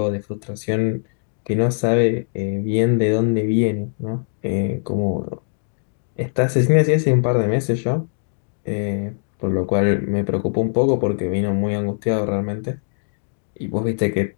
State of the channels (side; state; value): right; silent; digital silence